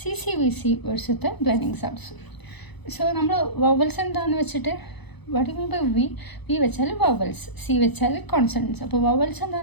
വേർഡ്സത്തെ ബ്ലെൻഡിങ് സൗണ്ട്സും. സോ നമ്മൾ വവൽസ് എന്താണെന്ന് വെച്ചിട്ട് what you mean by V വെച്ചാൽ വവൽസ്, സി വെച്ചാൽ കോൺസണൻസ്. അപ്പോൾ വവൽസ്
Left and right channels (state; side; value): late; right; 0.99 ms